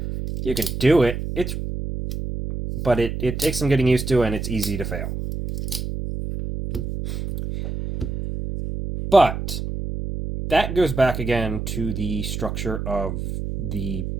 You can do it. But it takes some getting used to, and it's easy to fail. But that goes back again to the structure of the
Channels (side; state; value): right; noise; hum, 5 dB below the sound